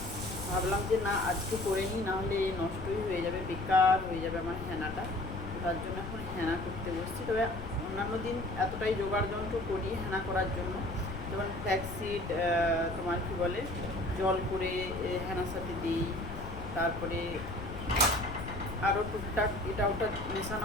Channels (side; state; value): left; noise; rumble, 8 dB below the sound